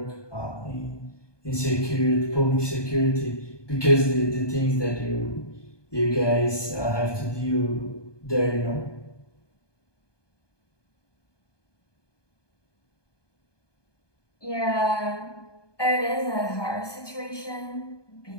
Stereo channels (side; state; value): right; late; 1.2 ms